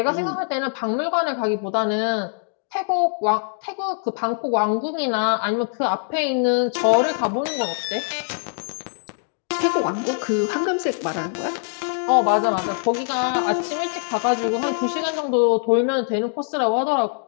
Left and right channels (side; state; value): right; silent; digital silence